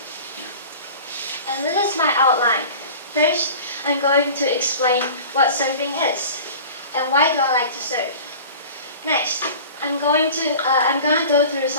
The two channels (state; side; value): inverted; both; correlation -0.39